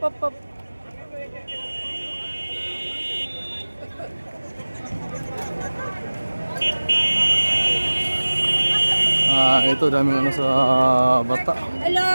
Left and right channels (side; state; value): both; inverted; correlation -1.00